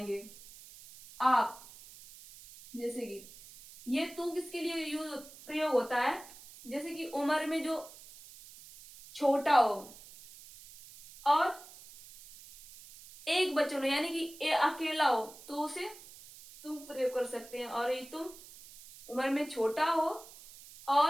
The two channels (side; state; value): right; noise; hiss, 18 dB below the sound